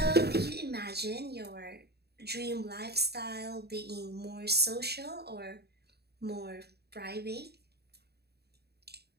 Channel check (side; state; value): left; late; 0.47 ms